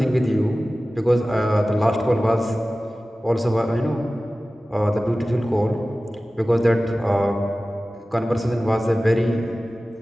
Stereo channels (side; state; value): both; normal; correlation 0.96